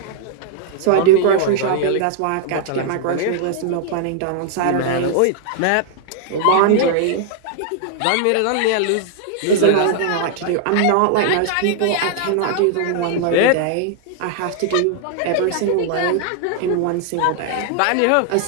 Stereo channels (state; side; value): different; both; correlation -0.01